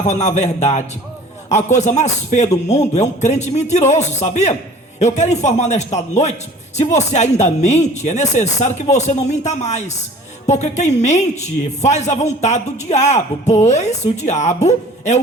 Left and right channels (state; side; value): normal; both; correlation 0.47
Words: na verdade. A coisa mais feia do mundo é um crente mentiroso, sabia? Eu quero informar nesta noite, se você ainda mente, é necessário que você não minta mais. Porque quem mente faz a vontade do diabo, pois o diabo é